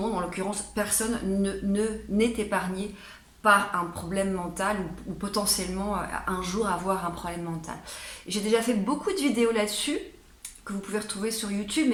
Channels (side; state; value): both; identical; correlation 1.00